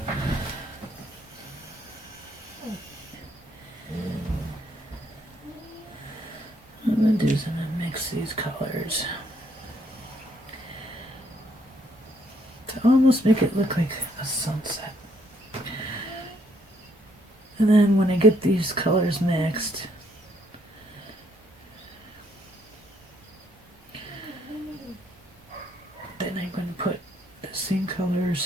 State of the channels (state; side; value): normal; both; correlation 0.70